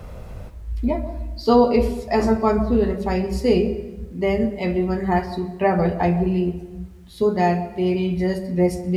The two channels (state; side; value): identical; both; correlation 1.00